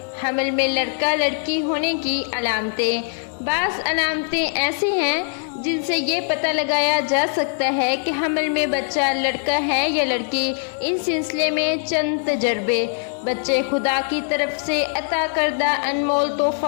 حمل میں لڑکا لڑکی ہونے کی علامتیں۔ بعض علامتیں ایسی ہیں جن سے یہ پتہ لگایا جا سکتا ہے کہ حمل میں بچہ لڑکا ہے یا لڑکی۔ ان سلسلے میں چند تجربے۔ بچے خدا کی طرف سے عطا کردہ انمول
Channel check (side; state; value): right; silent; digital silence